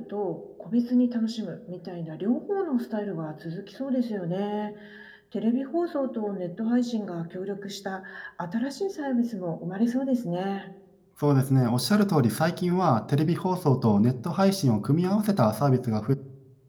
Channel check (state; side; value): identical; both; correlation 1.00